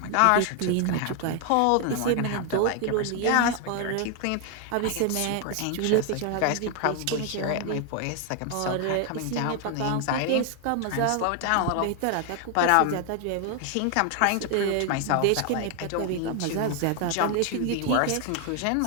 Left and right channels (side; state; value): both; different; correlation 0.00